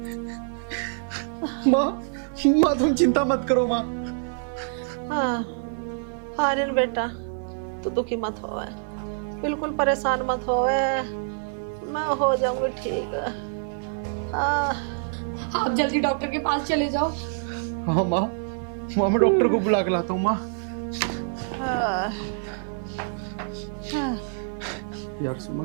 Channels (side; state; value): left; silent; 55 dB below the other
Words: माँ तुम चिंता मत करो माँ। हाँ, आर्यन बेटा, तू दुखी मत हो, बिल्कुल परेशान मत हो, मैं हो जाऊंगी ठीक। आप जल्दी डॉक्टर के पास चले जाओ। हाँ माँ, मैं डॉक्टर को बुला के लाता हूँ माँ। यार